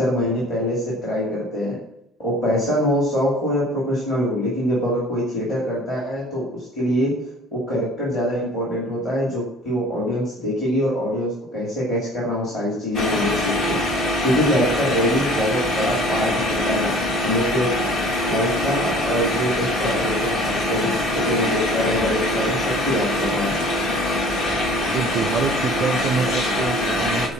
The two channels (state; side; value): normal; both; correlation 0.48